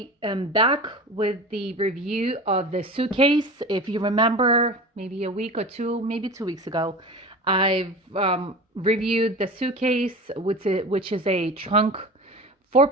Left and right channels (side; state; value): both; normal; correlation 0.33